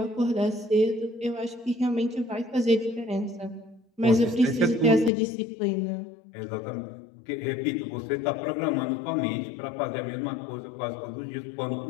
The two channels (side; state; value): right; drops out; at 5.1 s